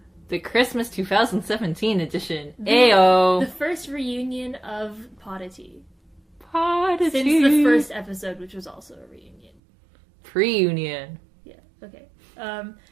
The Christmas 2017 edition. Ayo! The first reunion of Podditea. Podditea. Since the first episode, which was also a reunion. Pre-union. Yeah, okay.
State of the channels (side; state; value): left; drops out; at 9.5 s